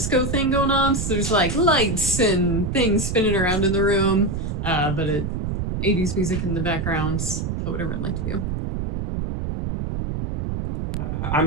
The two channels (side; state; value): right; noise; rumble, 3 dB below the sound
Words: thing going on. So there's like lights and things spinning around in the room, but 80s music in the background. What would everyone like to do?